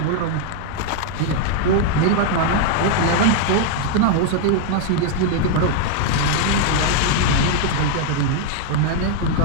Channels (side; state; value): both; different; correlation 0.00